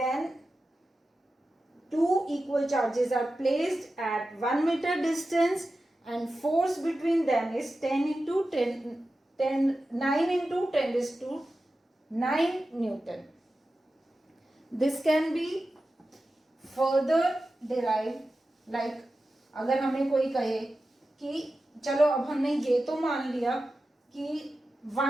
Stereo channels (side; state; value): both; normal; correlation 0.93